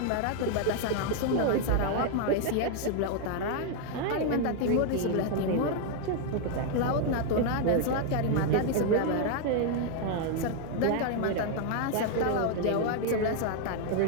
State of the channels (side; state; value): both; different; correlation 0.00